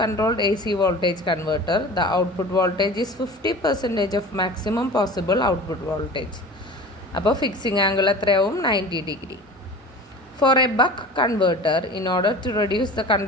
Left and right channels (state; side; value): normal; both; correlation 0.37